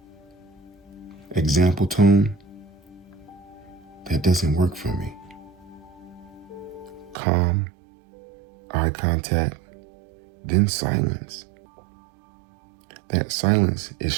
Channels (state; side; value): drops out; left; at 7.2 s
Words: Example tone, that doesn't work for me. Calm, eye contact, then silence. That silence is